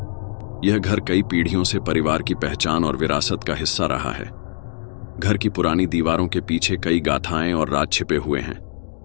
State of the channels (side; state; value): right; silent; digital silence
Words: यह घर कई पीढ़ियों से परिवार की पहचान और विरासत का हिस्सा रहा है। घर की पुरानी दीवारों के पीछे कई गाथाएं और राज छिपे हुए हैं,